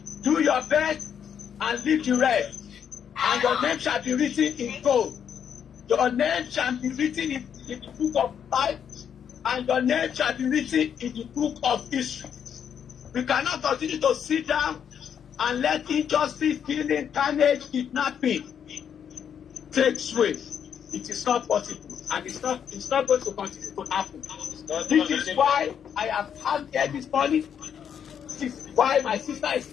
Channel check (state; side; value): quieter; right; 8.2 dB